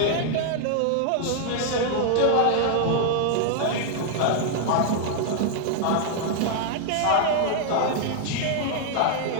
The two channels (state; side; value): different; both; correlation 0.00